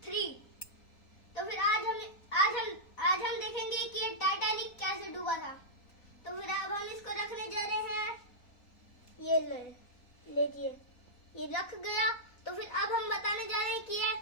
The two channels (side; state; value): right; late; 4.1 ms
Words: 3। तो फिर आज हम देखेंगे कि ये टाइटैनिक कैसे डूबा था। तो फिर अब हम इसको रखने जा रहे हैं। ये लीजिए, ये रख गया। तो फिर अब हम बताने जा रहे हैं कि ये